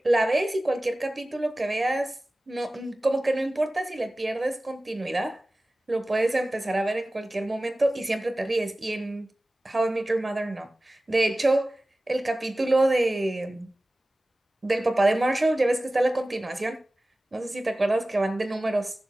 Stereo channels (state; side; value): normal; both; correlation 0.97